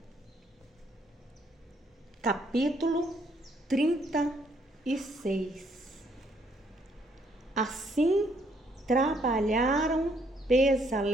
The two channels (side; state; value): both; normal; correlation 0.69